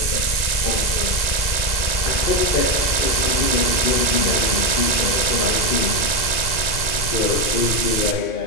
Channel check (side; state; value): right; late; 2.0 ms